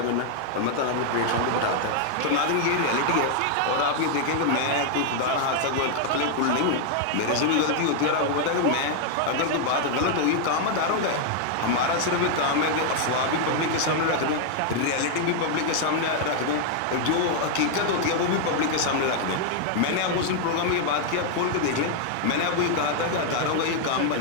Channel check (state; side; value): different; both; correlation 0.00